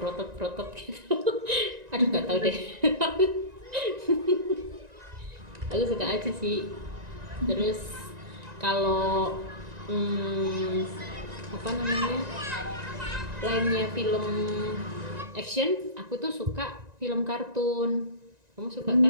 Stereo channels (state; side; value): late; left; 1.9 ms